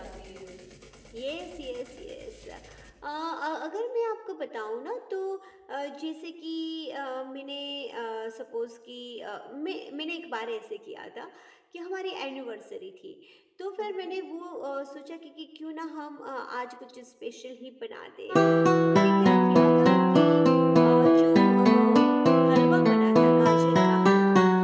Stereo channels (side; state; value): both; identical; correlation 1.00